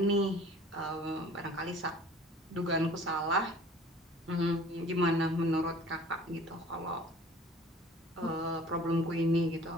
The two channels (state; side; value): normal; both; correlation 0.48